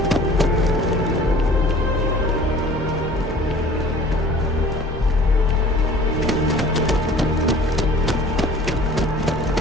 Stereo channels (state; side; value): normal; both; correlation 0.48